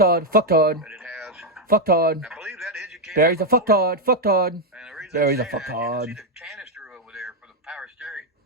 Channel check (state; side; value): normal; both; correlation 0.01